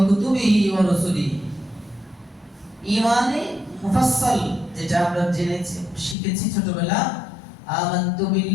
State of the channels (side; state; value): right; drops out; at 6.2 s